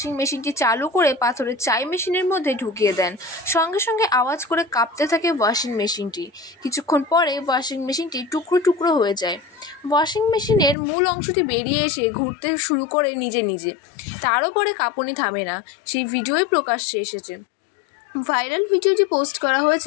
মেশিনটি চালু করে পাথরের চাই মেশিনের মধ্যে ঢুকিয়ে দেন। সঙ্গে সঙ্গে আওয়াজ করে কাঁপতে থাকে ওয়াশিং মেশিনটি। কিছুক্ষণ পরে ওয়াশিং মেশিনটি টুকরো টুকরো হয়ে যায়। ওয়াশিং মেশিনের মূল অংশটি বেরিয়ে এসে ঘুরতে শুরু করে নিজে নিজে। তারও পরে কাঁপুনি থামে না। সেই ভিডিওই প্রকাশ্যে এসেছে। ভাইরাল ভিডিওটি পোস্ট করা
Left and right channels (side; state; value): right; drops out; at 10.8 s